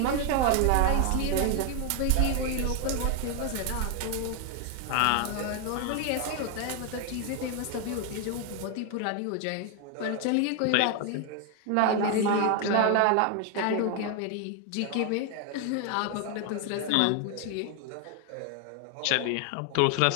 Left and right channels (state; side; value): different; both; correlation 0.01